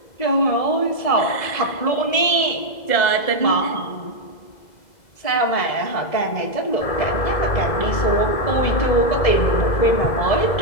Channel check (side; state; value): right; late; 2.0 ms